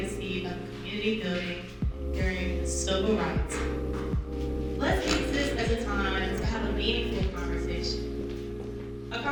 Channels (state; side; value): identical; both; correlation 1.00